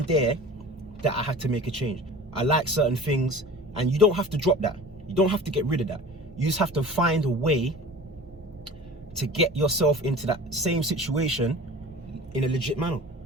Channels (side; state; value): both; normal; correlation 0.40